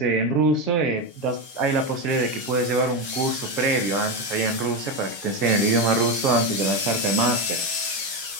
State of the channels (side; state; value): right; late; 6.3 ms